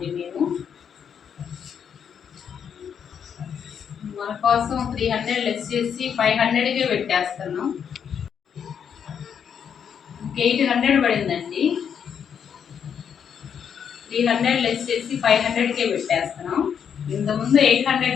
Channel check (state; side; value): quieter; right; 7.7 dB